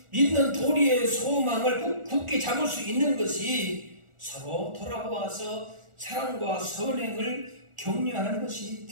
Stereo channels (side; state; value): left; late; 1.4 ms